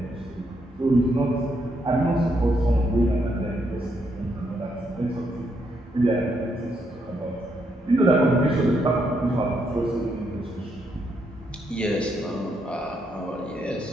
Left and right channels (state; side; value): normal; both; correlation 0.77